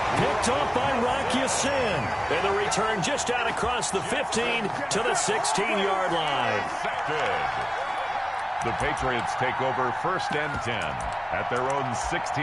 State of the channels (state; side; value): identical; both; correlation 1.00